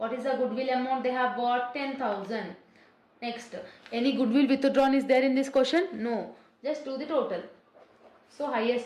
is the goodwill amount they have bought? 10,000. Next, any goodwill withdrawn is there in this question? No. Just do the total. So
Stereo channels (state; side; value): identical; both; correlation 1.00